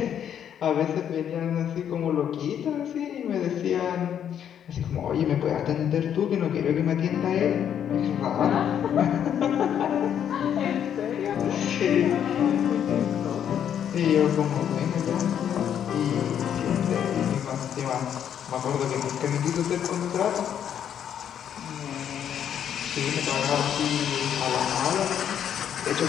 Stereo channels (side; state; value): right; quieter; 9.2 dB